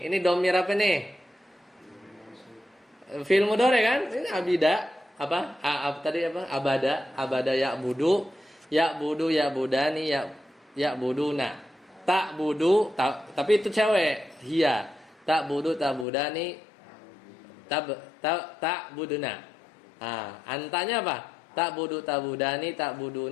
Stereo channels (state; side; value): drops out; right; at 16.1 s